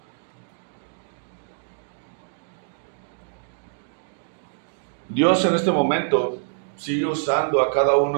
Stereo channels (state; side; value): silent; left; digital silence